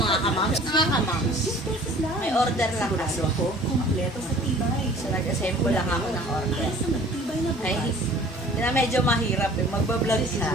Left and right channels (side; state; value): both; normal; correlation 0.48